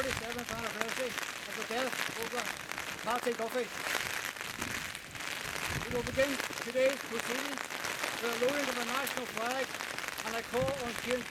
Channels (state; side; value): identical; both; correlation 1.00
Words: anniversary of the death of Oglach Patsy Duffy. We will begin today's proceedings with a lowering of the national flag, and I call on James